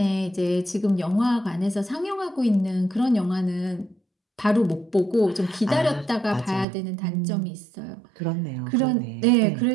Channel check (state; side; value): drops out; left; at 6.7 s